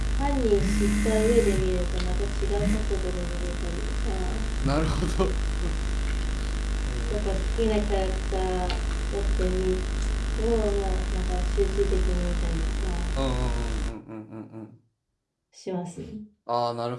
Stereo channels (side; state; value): both; identical; correlation 1.00